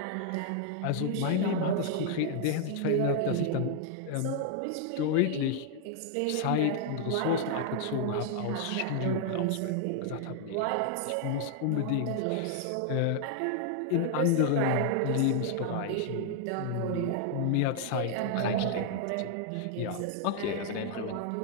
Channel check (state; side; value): different; both; correlation 0.00